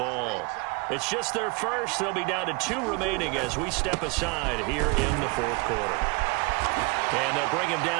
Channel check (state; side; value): quieter; left; 29.6 dB